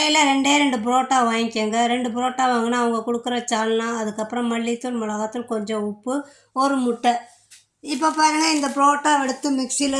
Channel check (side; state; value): both; identical; correlation 1.00